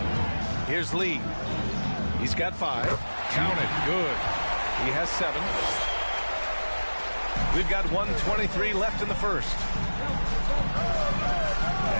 Here's Lee. He's got 5. Count it. Good. He has 7. We've got 1:23 left in the first.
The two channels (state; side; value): inverted; both; correlation -1.00